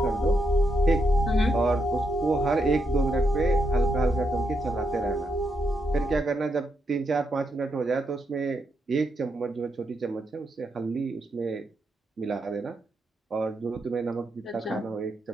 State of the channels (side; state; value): both; normal; correlation 0.81